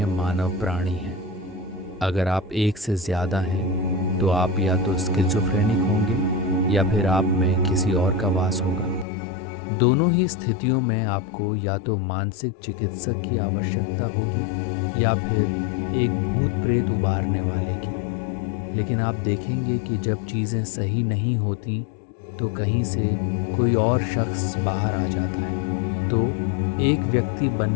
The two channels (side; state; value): right; drops out; at 9.1 s